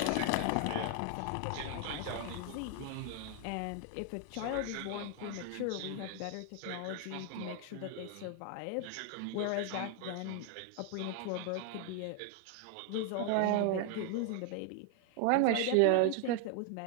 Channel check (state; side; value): different; both; correlation 0.00